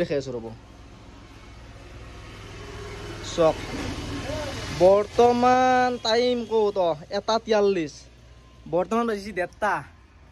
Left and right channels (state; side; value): identical; both; correlation 1.00